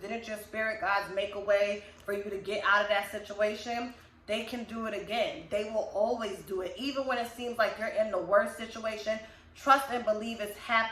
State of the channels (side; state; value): both; identical; correlation 1.00